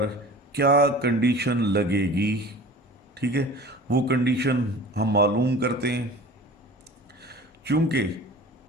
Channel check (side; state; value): both; normal; correlation 0.40